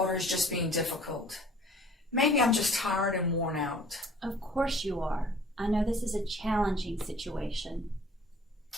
is just being difficult. Maybe I'm just tired and worn out. Of course you are. I know this is a challenging situation.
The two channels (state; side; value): normal; both; correlation 0.52